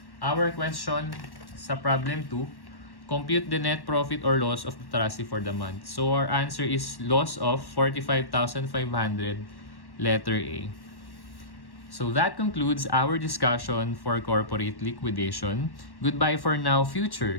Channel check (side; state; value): right; late; 1.1 ms